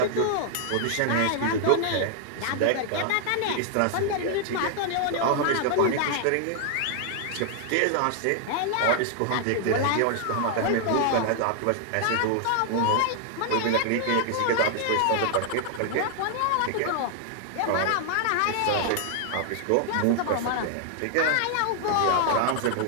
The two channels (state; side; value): different; both; correlation 0.00